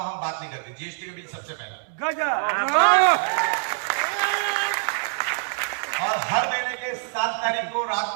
हम बात नहीं करते, जीएसटी का बिल सबसे पहला। और हर महीने के 7 तारीख को रात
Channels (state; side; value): silent; left; 62 dB below the other